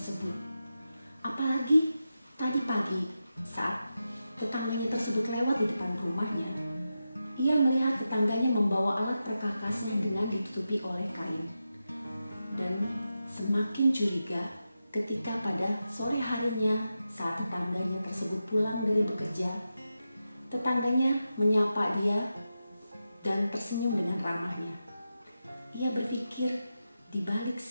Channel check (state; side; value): inverted; both; correlation -0.90